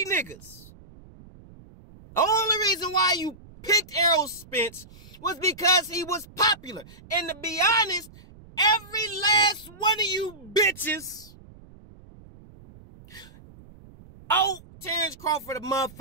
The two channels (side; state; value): right; noise; rumble, 21 dB below the sound